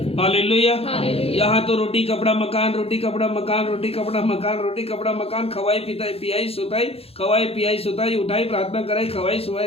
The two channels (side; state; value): right; late; 0.28 ms